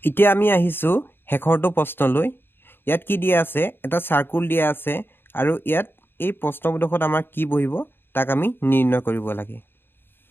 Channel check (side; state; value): right; late; 0.10 ms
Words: এতিয়া আমি আহিছোঁ শেষৰটো প্ৰশ্নলৈ ইয়াত কি দিয়া আছে এটা সাৰ্কুল দিয়া আছে আৰু ইয়াত এই প্ৰশ্নবোধকত আমাৰ কি বহিব তাক আমি নিৰ্ণয় কৰিব লাগে